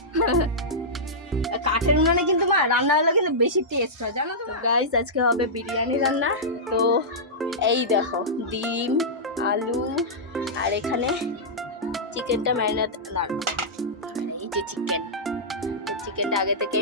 কাঠের উনুনে কিন্তু মা রান্না হলে কিন্তু বেশি টেস্ট হয়, জানো তো গাইস। আজকে হবে বিরিয়ানি রান্না। তো এই দেখো ডিম, আলু, আর এখানে চিকেনটা ম্যারিনেট, আর এই যে চিকেন চিকেনটা আগে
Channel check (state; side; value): normal; both; correlation -0.13